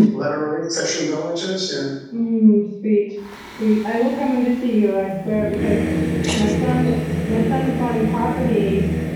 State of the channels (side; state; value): both; identical; correlation 1.00